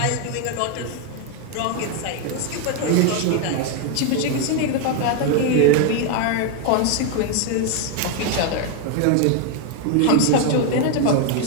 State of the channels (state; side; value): different; both; correlation 0.01